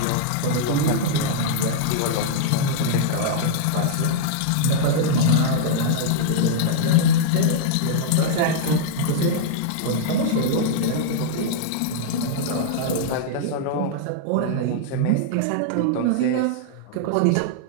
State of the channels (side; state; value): both; different; correlation -0.01